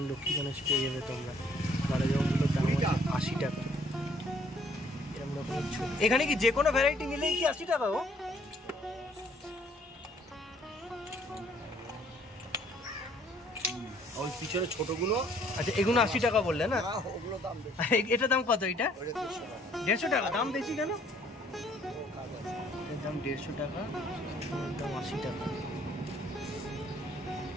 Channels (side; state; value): both; normal; correlation 0.62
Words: লক্ষ্মী গণেশ পেয়ে যাবে তোমরা। কালোজামগুলোর দাম হচ্ছে 80 টাকা। এরকম রকমের ছোট, এখানে কি যে কোনো ভ্যারাইটি নিলেই কি 80 টাকা? ও ওই পিছনে ছোটগুলো, আচ্ছা এগুলো 80 টাকা বললে না? এটার দাম কত? এটা 150 টাকা। দাম বেশি কেন? এর দাম 150 টাকা, দাম 80 টাকা।